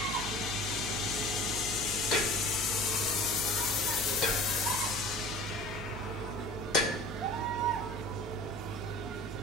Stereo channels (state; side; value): normal; both; correlation 0.42